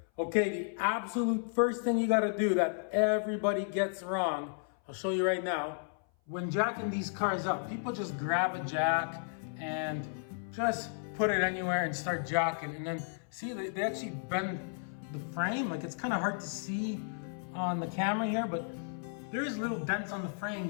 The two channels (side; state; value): right; silent; 55 dB below the other